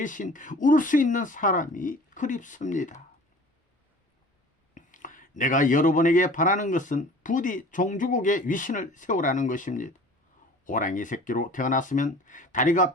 울 수 있는 사람이 그립습니다. 내가 여러분에게 바라는 것은 부디 종주국의 위신을 세우라는 것입니다. 호랑이 새끼로 태어났으면 다리가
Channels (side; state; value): both; normal; correlation 0.45